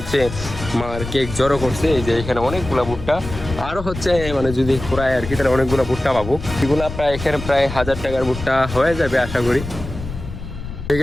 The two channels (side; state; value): left; noise; rumble, 9 dB below the sound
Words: আর কেক জড়ো করছে। এই যে এখানে অনেকগুলো ভুট্টা, আরও হচ্ছে মানে যদি পুরায় আর কি তাহলে অনেকগুলো ভুট্টা পাবো। এগুলো প্রায় এখানে প্রায় 1000 টাকার ভুট্টা হয়ে যাবে আশা করি। ঠিক